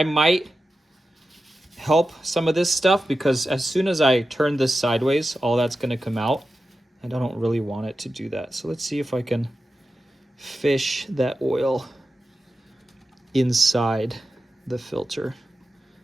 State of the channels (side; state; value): both; normal; correlation 0.92